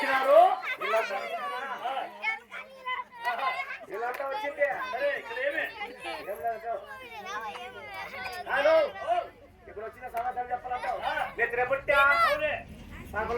వీళ్ళంతా వచ్చింది. ఇప్పుడు వచ్చిన సమాధానం చెప్పాలంటావు. నిద్ర పుట్టా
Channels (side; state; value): both; identical; correlation 1.00